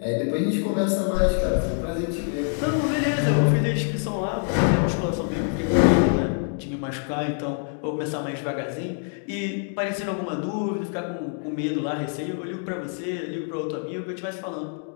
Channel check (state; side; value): silent; right; 58 dB below the other